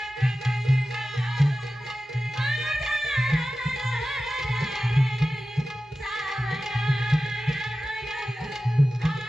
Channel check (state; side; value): normal; both; correlation 0.95